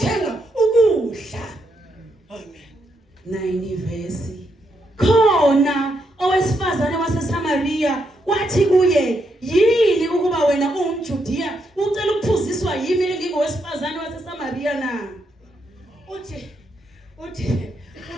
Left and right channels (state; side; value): normal; both; correlation 0.79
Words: ukudla. Amen. 90 verse. Khona owesifazane waseSamaria wathi kuye, "Yini ukuba wena ungumJudiya ucela ukuphuziswa yimi engingowesifazane waseSamaria na?" Uthi